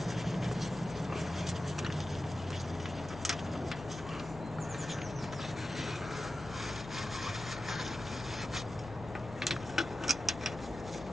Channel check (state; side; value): normal; both; correlation 0.93